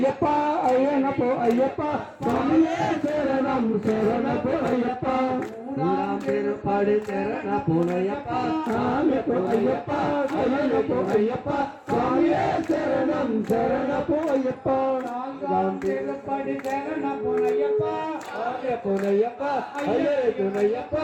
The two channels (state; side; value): identical; both; correlation 1.00